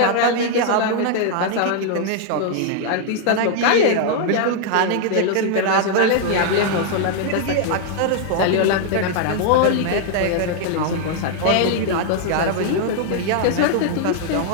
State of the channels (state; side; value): different; both; correlation 0.00